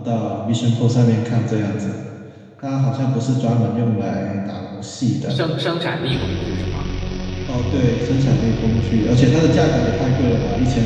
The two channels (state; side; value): identical; both; correlation 1.00